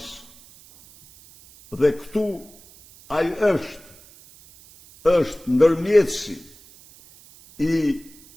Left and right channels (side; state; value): right; noise; hiss, 24 dB below the sound